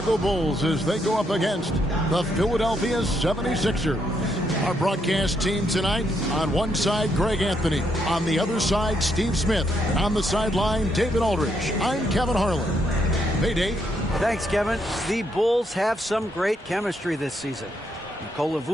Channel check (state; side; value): normal; both; correlation 0.76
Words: Bulls as they go up against the Philadelphia 76ers. Our broadcast team tonight, on one side, Greg Anthony. On the other side, Steve Smith. And on the sideline, David Aldridge. I'm Kevin Harlan. Hey, Dave. Thanks, Kevin. The Bulls have some great chemistry this season. Nikola